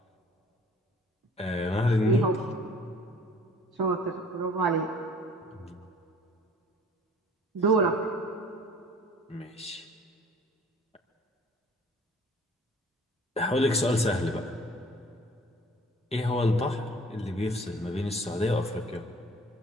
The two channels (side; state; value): both; normal; correlation 0.51